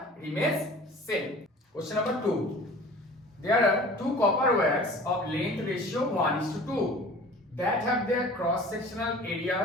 remains same. Question number 2. There are two copper wires of length ratio 1:2 that have their cross sectional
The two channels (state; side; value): normal; both; correlation 0.43